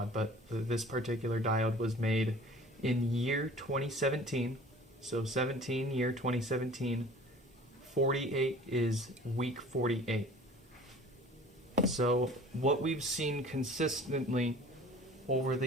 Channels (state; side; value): normal; both; correlation 0.46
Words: but this particular diode was made in year 2017. So 17, year 2017. 48 is week 48. So what we've seen consistently over